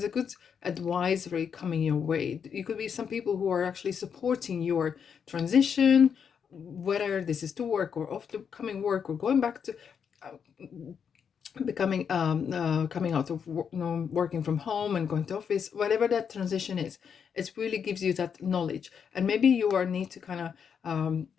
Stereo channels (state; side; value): quieter; right; 7.1 dB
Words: a good advisory coming your way. You could be some people who are actually supporting your transition, whether this is to work or off to coming work or going back to becoming coming out of working from home and going to office, whatever that transition is. It really gives you that knowledge, and maybe you are need to kind of